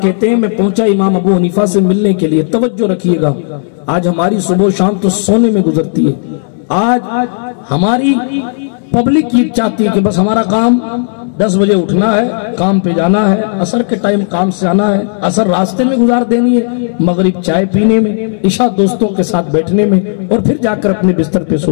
کہتے ہیں میں پہنچا امام ابو حنیفہ سے ملنے کے لیے۔ توجہ رکھیے گا، آج ہماری صبح و شام تو سونے میں گزرتی ہے۔ آج ہماری پبلک یہ چاہتی ہے کہ بس ہمارا کام 10 بجے اٹھنا ہے، کام پہ جانا ہے، عصر کے ٹائم کام سے آنا ہے، عصر راستے میں گزار دینی ہے، مغرب چائے پینے میں، عشاء دوستوں کے ساتھ بیٹھنے میں، اور پھر جا کر اپنے بستر پہ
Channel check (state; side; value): silent; right; digital silence